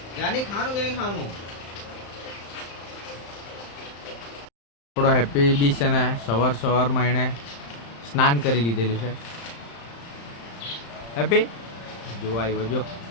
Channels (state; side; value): late; right; 35 ms